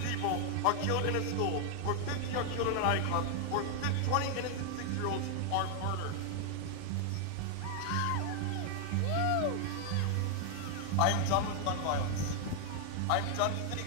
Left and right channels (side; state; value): both; different; correlation 0.00